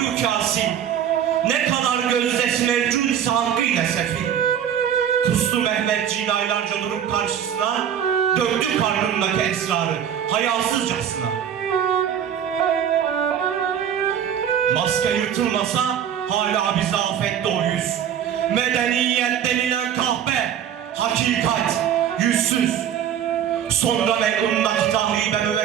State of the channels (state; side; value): quieter; left; 9.3 dB